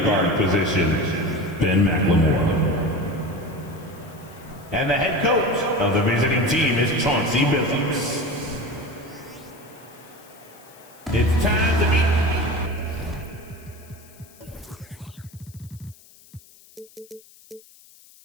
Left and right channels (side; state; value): left; noise; hiss, 25 dB below the sound